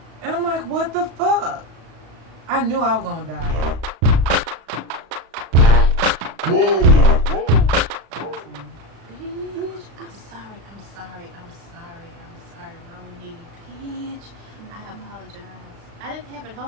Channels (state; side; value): late; left; 35 ms